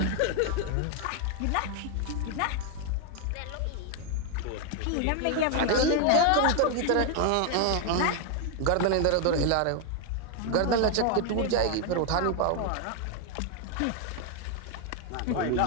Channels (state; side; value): different; both; correlation 0.00